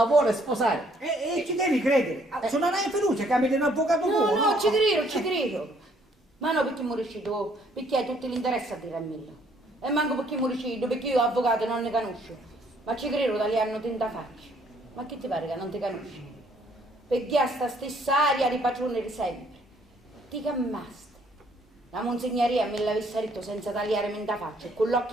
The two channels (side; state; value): both; normal; correlation 0.65